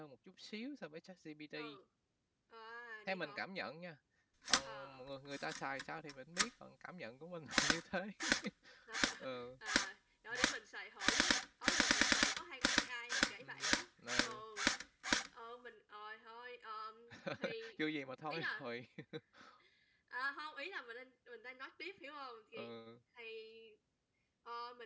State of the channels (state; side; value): identical; both; correlation 1.00